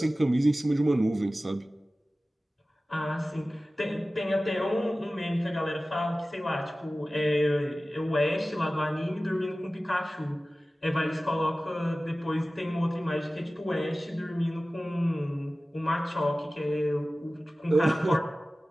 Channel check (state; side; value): normal; both; correlation 0.96